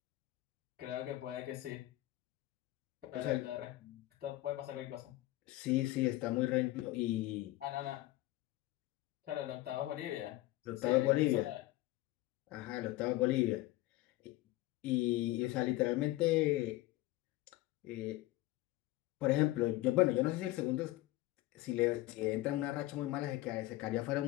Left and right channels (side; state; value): right; quieter; 17.4 dB